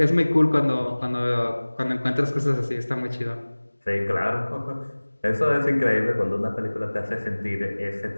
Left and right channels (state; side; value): inverted; both; correlation -1.00